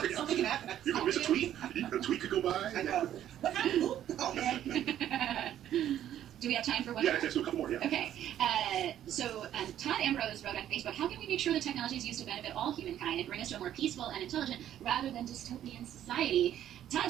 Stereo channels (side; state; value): left; quieter; 11.3 dB